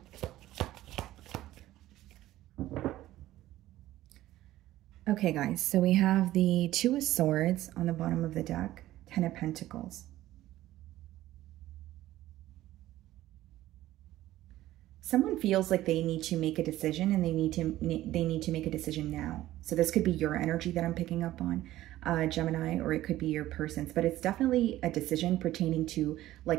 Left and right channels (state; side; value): quieter; left; 15.0 dB